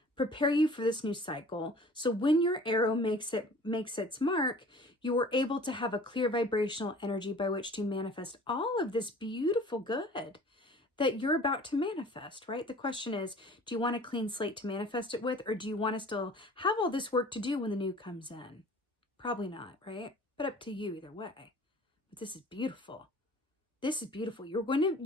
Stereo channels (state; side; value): normal; both; correlation 0.47